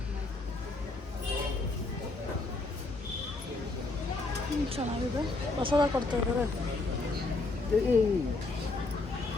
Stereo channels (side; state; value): right; quieter; 3.3 dB